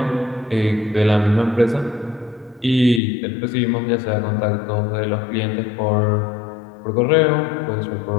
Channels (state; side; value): drops out; right; at 3.0 s